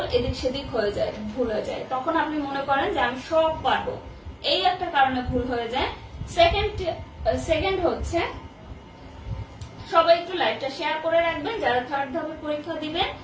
এদিক সেদিক হয়ে যায়, ভুল হয়ে যায়, তখন আপনি মনে করেন যে আমি সব পারবো। এই একটা কারণে ভুল হয়ে যায়। সেকেন্ড হচ্ছে সবাই একটু লাইভটা শেয়ার করে রাখবেন যারা থার্ড ধাপে পরীক্ষা দিবেন,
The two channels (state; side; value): identical; both; correlation 1.00